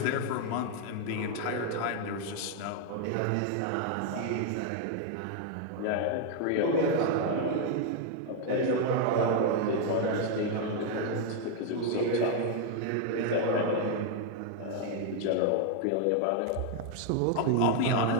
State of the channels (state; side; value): different; both; correlation 0.00